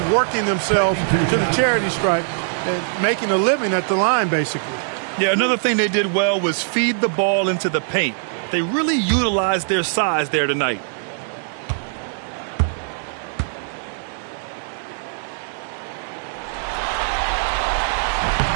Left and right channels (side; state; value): left; silent; 65 dB below the other